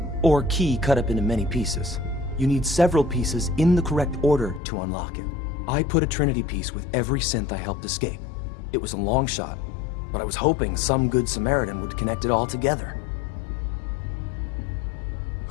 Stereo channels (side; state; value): right; drops out; at 4.6 s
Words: or key cut up into many pieces. You need several pieces in the correct order to unlock it. I put a Trinity piece with every synth I helped escape. It was a long shot, but I was hoping some good Samaritan would connect it all together.